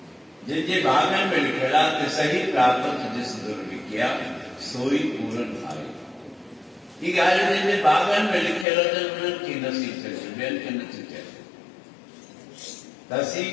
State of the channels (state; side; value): drops out; right; at 8.7 s